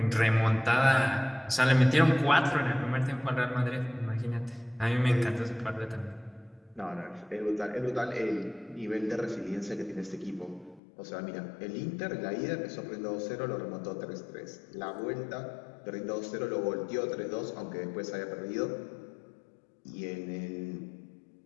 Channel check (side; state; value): right; drops out; at 10.8 s